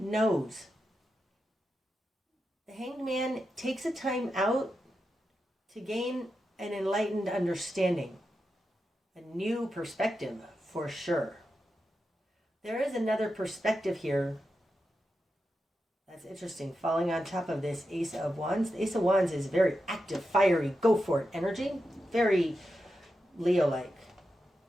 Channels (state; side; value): normal; both; correlation 0.88